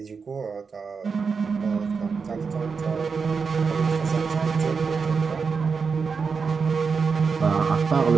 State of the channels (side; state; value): left; quieter; 5.3 dB